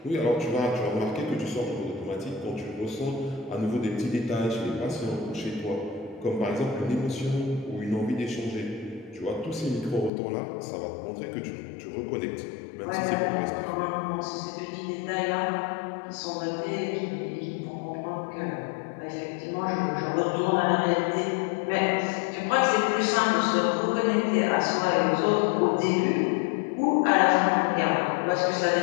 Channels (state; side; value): drops out; right; at 10.1 s